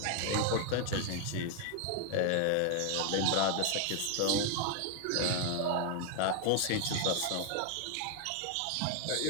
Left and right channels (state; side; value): different; both; correlation 0.00